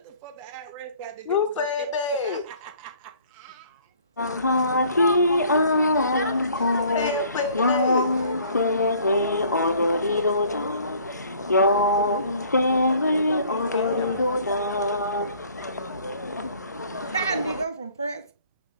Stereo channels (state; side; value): inverted; both; correlation -0.55